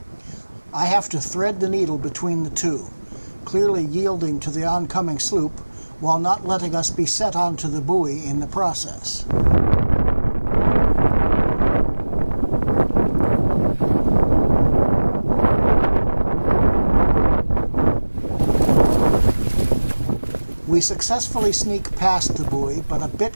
I have to thread the needle between the two, clearly yielding to the oncoming sloop, while not letting us be set onto the buoy in the process. We successfully sneak past the buoy, but a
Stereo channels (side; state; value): both; inverted; correlation -1.00